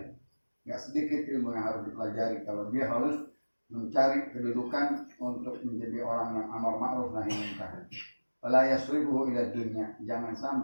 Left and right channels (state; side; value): inverted; both; correlation -1.00